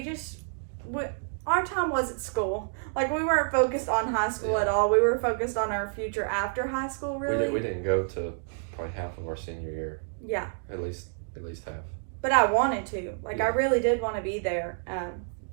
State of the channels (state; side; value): silent; left; digital silence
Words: our time was at school. Like, we weren't focused on high school at all. We were focused on our future after high school, really. We didn't go to probably half of our senior year. Yeah. At least half. But I wanted to. Like, I really did want to be there.